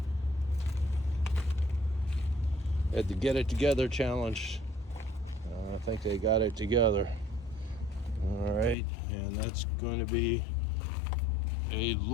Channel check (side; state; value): right; drops out; at 8.8 s